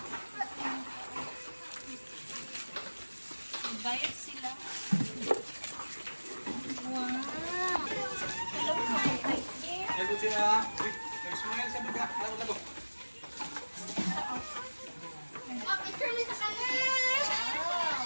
Bayad sila. Wow. Lago siya. Smile sa baba. Lago. Picture mo sa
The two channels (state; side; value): inverted; both; correlation -1.00